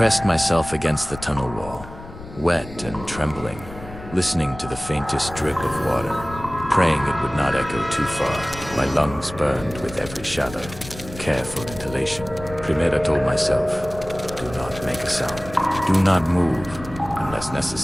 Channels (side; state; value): left; noise; rumble, 14 dB below the sound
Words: myself against the tunnel wall, wet and trembling, listening to the faintest drip of water, praying it would not echo too far. My lungs burned with every shadow. Careful inhalation. Primera told myself, do not make a sound. Do not move unless